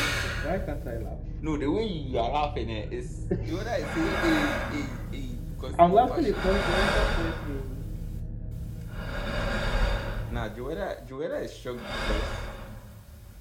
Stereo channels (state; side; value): identical; both; correlation 1.00